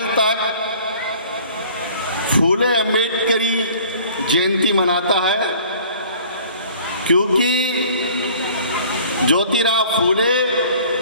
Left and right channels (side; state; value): both; inverted; correlation -0.51